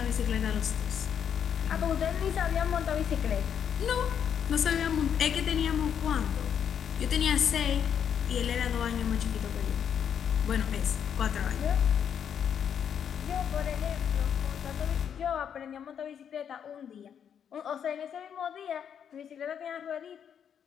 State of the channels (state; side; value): quieter; right; 8.3 dB